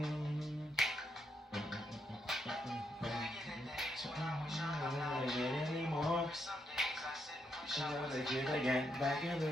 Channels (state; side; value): normal; both; correlation 0.79